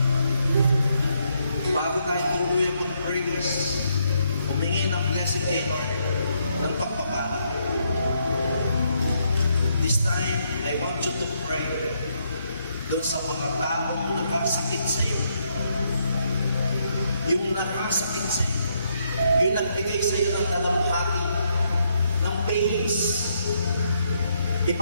Bago tayo tuloy mag-praise, humingi ng blessing kay Lord ng pagpapala. This time, I want you to pray doon sa mga taong nakasakit sa iyo. Yung nakasakit sa iyo, yung nagbigay sa iyo ng dalampati, ng pains,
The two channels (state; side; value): inverted; both; correlation -0.75